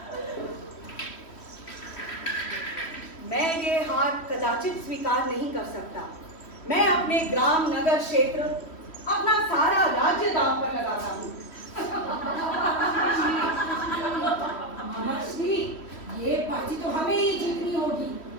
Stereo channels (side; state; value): right; late; 3.1 ms